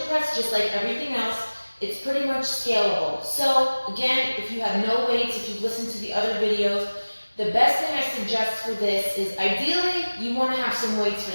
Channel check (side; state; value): both; inverted; correlation -1.00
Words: press, just like everything else, it's pretty much scalable. So again, if you have no weights, if you've listened to the other videos, the best thing I suggest for this is ideally you want to have some weights